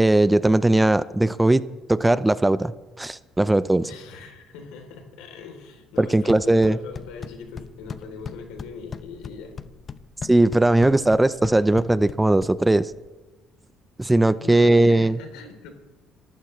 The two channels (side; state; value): both; normal; correlation 0.98